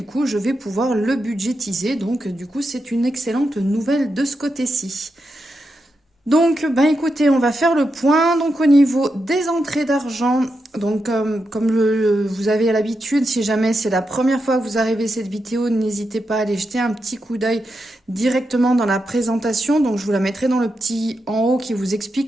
coup, je vais pouvoir le budgétiser. Donc, du coup, c'est une excellente nouvelle de ce côté-ci. Donc, ben écoutez, on va faire le point. Donc, au niveau des entrées d'argent, donc vous avez l'habitude, si jamais c'est la première fois que vous arrivez à cette vidéo, n'hésitez pas à aller jeter un petit coup d'œil directement dans la présentation. Donc, je vous la mettrai dans le petit en haut qui vous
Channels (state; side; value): normal; both; correlation 0.86